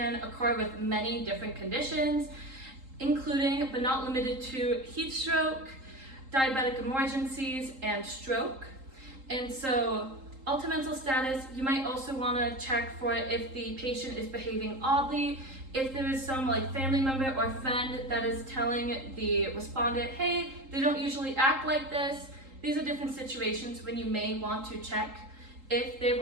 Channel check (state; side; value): late; left; 3.8 ms